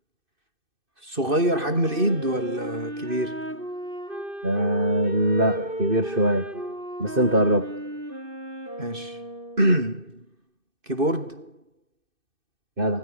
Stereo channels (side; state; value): left; late; 2.6 ms